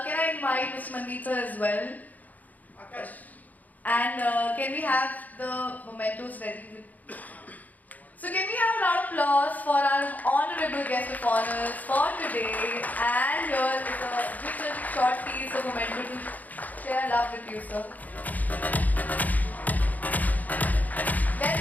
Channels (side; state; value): right; late; 0.079 ms